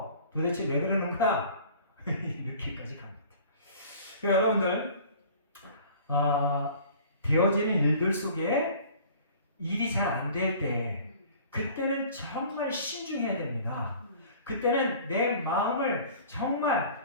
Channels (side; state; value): both; inverted; correlation -0.47